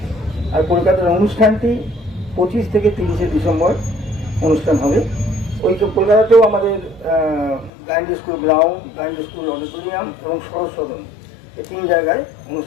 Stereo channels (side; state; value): right; drops out; at 7.7 s